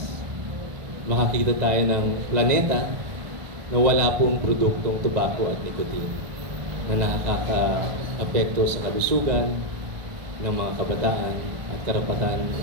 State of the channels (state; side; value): late; left; 1.4 ms